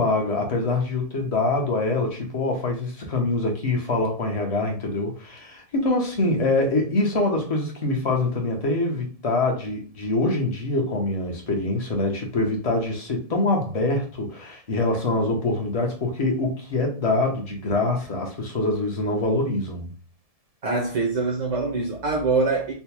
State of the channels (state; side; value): late; left; 1.7 ms